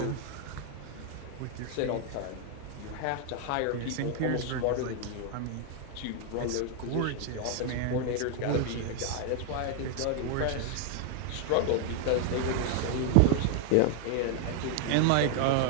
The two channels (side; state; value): both; different; correlation 0.00